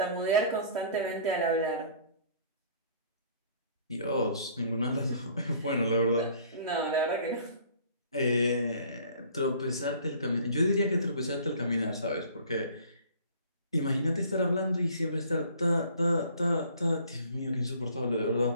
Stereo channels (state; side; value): inverted; both; correlation -0.52